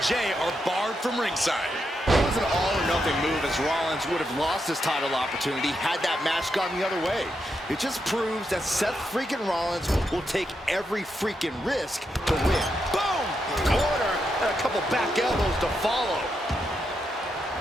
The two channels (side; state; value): both; normal; correlation 0.83